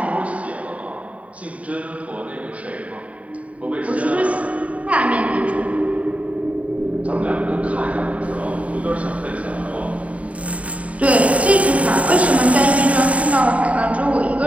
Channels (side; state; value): left; late; 0.067 ms